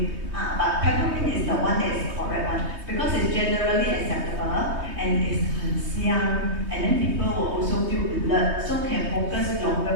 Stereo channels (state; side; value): late; left; 3.2 ms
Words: But peppermint is the one that is correct one because it's generally acceptable and it's young, and then people will also feel alert, so can focus